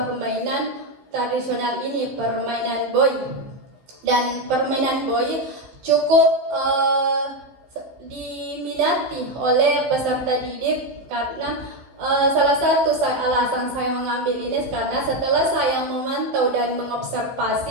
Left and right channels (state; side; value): late; left; 15 ms